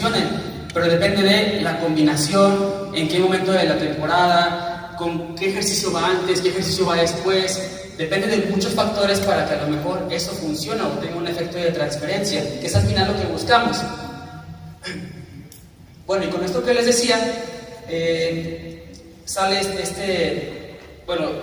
pero depende de la combinación, en qué momento de la temporada, con qué ejercicio va antes, qué ejercicio va después. Depende de muchos factores para que a lo mejor eso funcione o tenga un efecto de transferencia, que es al final lo que buscamos. Bueno, y con esto que les decía, sale bueno,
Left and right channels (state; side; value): identical; both; correlation 1.00